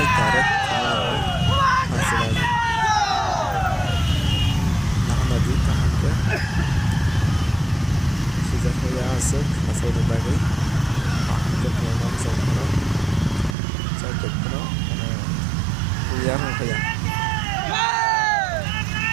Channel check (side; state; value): left; drops out; at 13.6 s